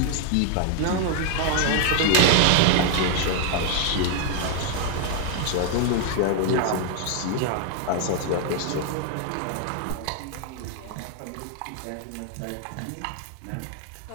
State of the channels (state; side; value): different; both; correlation 0.00